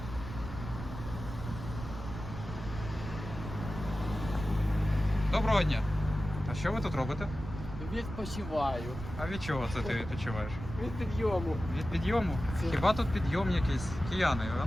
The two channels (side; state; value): right; noise; rumble, 9 dB below the sound